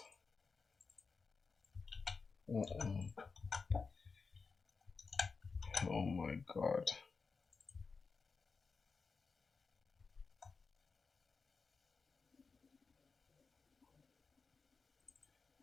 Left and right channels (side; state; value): right; quieter; 4.8 dB